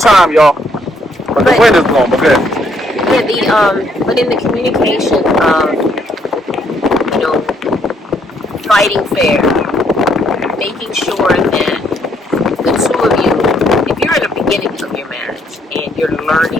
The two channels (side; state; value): both; normal; correlation 0.70